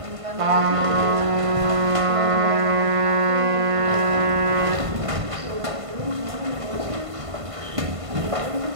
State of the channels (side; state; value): left; late; 1.5 ms